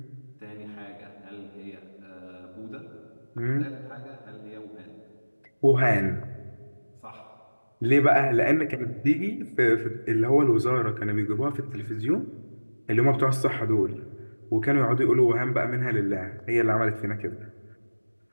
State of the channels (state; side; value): inverted; both; correlation -1.00